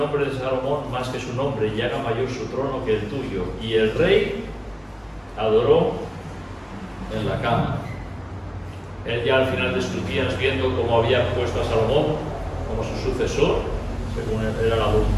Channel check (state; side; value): identical; both; correlation 1.00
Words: de Salomón más que su nombre, y haga mayor su trono que el tuyo. Y el rey adoró en la cama. Él ya al final de sus días, viendo cómo había puesto a Salomón como su sucesor, según era la